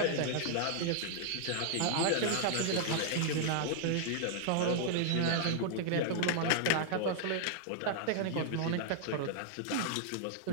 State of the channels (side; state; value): both; different; correlation -0.01